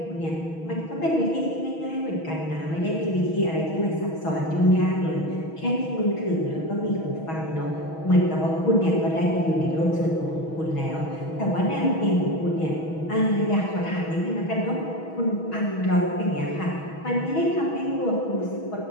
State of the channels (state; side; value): late; right; 6.2 ms